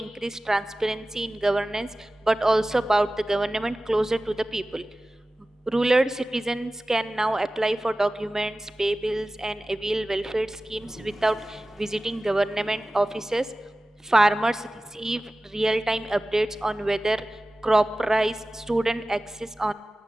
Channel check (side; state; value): both; normal; correlation 0.96